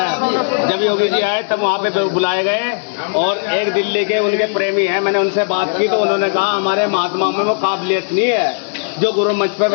जब योगी जी आए तब वहाँ पे बुलाए गए, और एक दिल्ली के उनके प्रेमी हैं, मैंने उनसे बात की तो उन्होंने कहा हमारे महात्मा में वो काबिलियत नहीं है जो गुरु मंच पे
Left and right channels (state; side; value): silent; right; digital silence